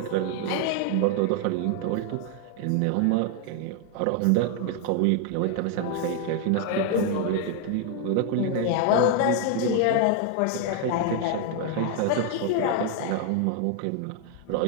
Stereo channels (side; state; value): both; different; correlation 0.00